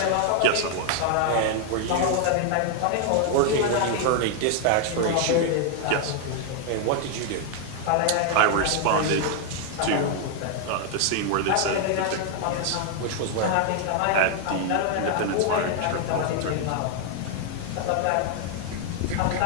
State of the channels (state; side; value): different; both; correlation 0.00